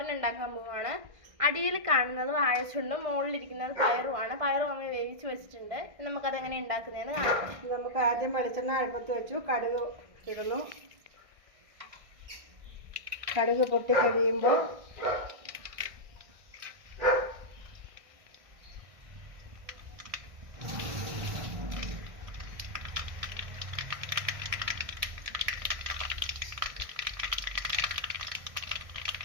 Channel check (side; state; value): left; late; 1.6 ms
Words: ഉണ്ടാക്കാൻ പോവുകയാണ്. അടിയിൽ കാണുന്നത് വാഴച്ചുണ്ടും മുകളിലിരിക്കുന്നത് പയറുമാണ്. പയറും അമ്മ വേവിച്ച് വെച്ചിട്ടുണ്ട്. നമുക്കത് എങ്ങനെ ഉണ്ടാക്കുന്നതെന്ന് കാണാം. നമുക്ക് ആദ്യം വെളിച്ചെണ്ണ അടുപ്പത്ത് വെച്ചു, കടുക് ഇടുന്നു. കടുക് പൊട്ടിക്കഴിയുമ്പോൾ